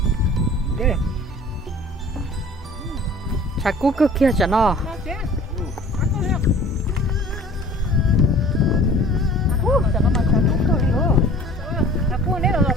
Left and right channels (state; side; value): normal; both; correlation 0.47